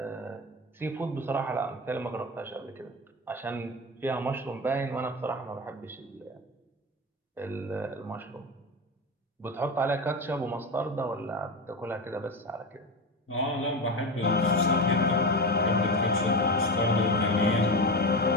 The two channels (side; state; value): both; normal; correlation 0.22